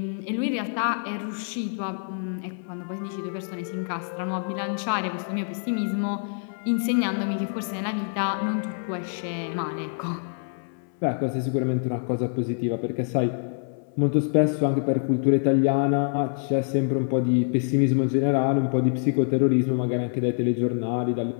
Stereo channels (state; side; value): silent; right; 61 dB below the other